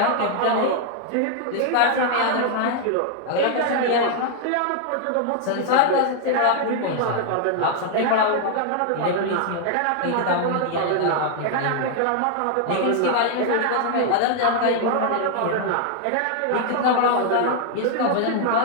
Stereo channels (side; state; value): both; different; correlation 0.00